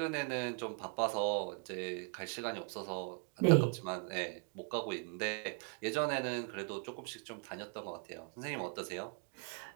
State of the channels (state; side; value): quieter; left; 37.5 dB